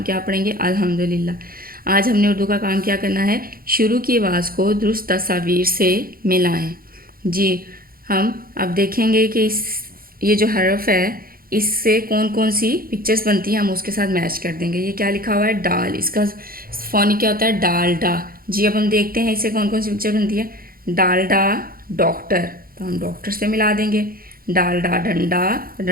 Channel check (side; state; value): left; late; 0.42 ms